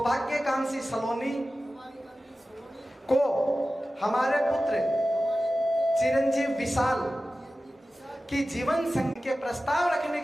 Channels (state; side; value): normal; both; correlation 0.95